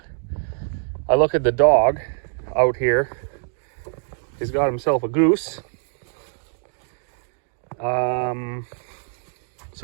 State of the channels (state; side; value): silent; left; 63 dB below the other